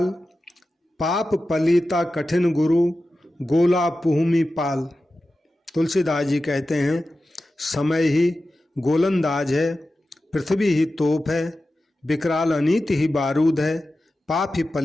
पाप पलीता कठिन गुरु गोला पुहुमी पाल। तुलसीदास जी कहते हैं, समय ही गोलंदाज है, पृथ्वी ही तोप है, विकराल अनीति ही बारूद है, पाप ही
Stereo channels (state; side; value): normal; both; correlation 0.93